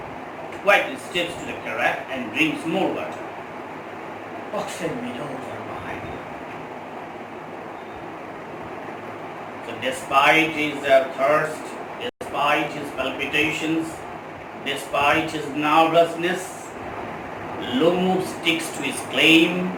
Quietly steps to the carafe and drinks more water. Oxen widows are behind him. So despite his thirst, despite his palpitations, despite his nervousness, Lomo sticks to his claim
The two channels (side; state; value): both; identical; correlation 1.00